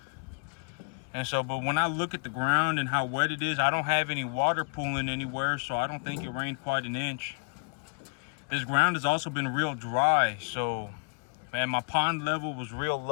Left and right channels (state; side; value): quieter; right; 37.7 dB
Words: And so, but when I look at the ground and how wet it is, I don't have any water pooling anywhere, so I don't think it rained quite an inch. This ground has also been real dry, so, man, my pond level was real